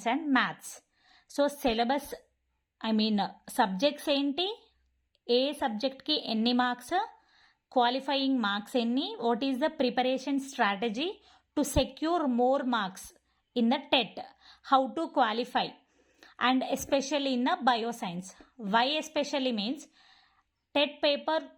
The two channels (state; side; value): identical; both; correlation 1.00